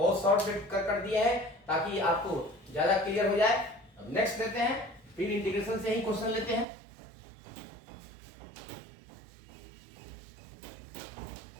शॉर्ट कर दिया है ताकि आपको ज्यादा क्लियर हो जाए। अब नेक्स्ट लेते हैं, फिर इंटीग्रेशन से ही क्वेश्चन लेते हैं।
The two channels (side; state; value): left; drops out; at 6.7 s